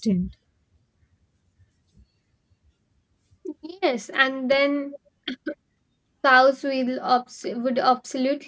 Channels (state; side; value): identical; both; correlation 1.00